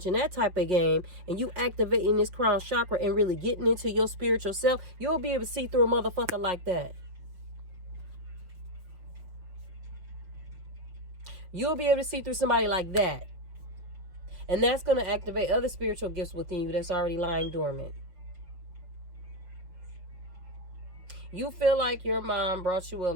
and that type of game, and you activating this crown chakra and really getting into your spiritual self, you'll be able to see through a motherfucker like that. You'll be able to see through somebody like that. And that's going to activate other spiritual gifts within you that's already lying dormant. You feel like your mom brought you a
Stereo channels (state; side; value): late; left; 5.5 ms